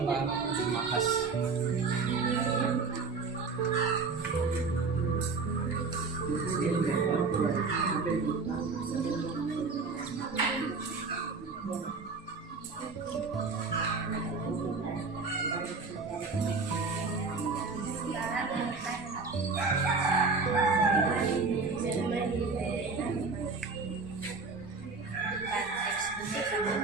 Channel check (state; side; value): quieter; left; 4.3 dB